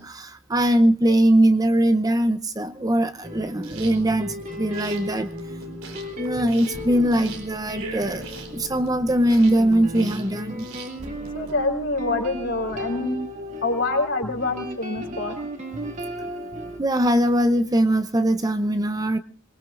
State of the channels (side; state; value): both; normal; correlation 0.75